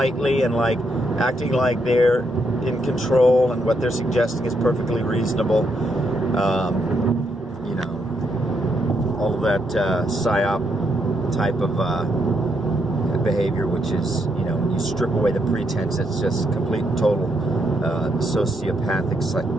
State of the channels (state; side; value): normal; both; correlation 0.78